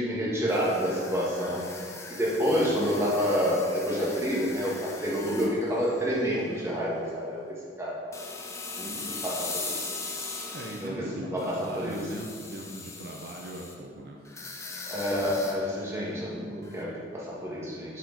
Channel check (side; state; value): both; normal; correlation 0.44